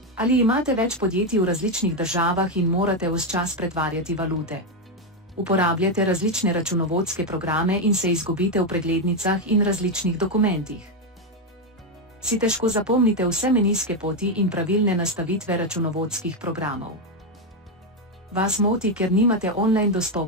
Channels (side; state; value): both; normal; correlation 0.06